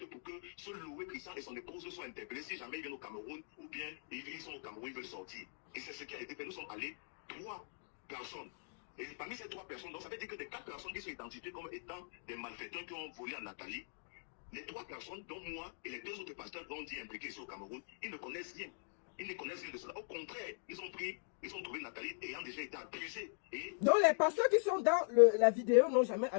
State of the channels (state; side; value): silent; right; digital silence